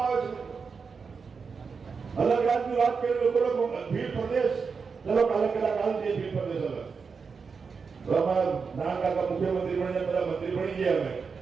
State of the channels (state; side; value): quieter; left; 5.4 dB